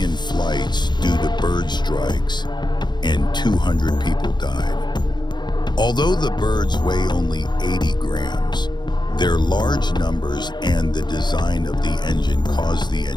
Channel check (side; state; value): right; late; 0.21 ms